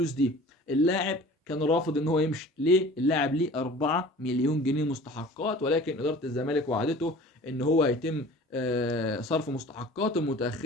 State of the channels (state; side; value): normal; both; correlation 0.44